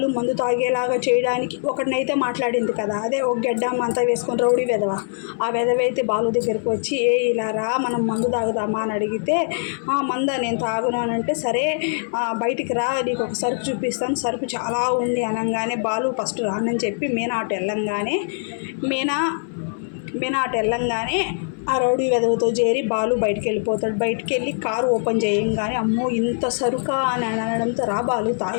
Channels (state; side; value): silent; right; 60 dB below the other